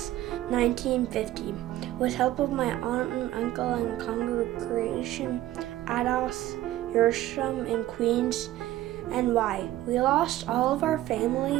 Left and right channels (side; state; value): left; quieter; 14.8 dB